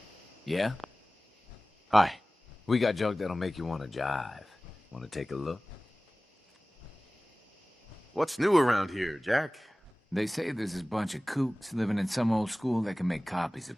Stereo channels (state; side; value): normal; both; correlation 0.98